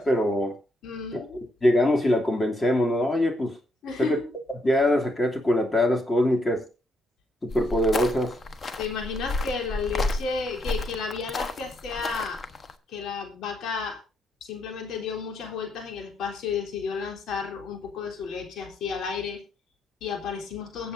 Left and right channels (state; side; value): normal; both; correlation 0.76